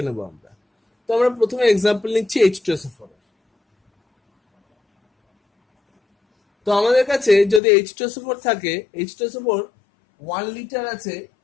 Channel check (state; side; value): drops out; right; at 7.6 s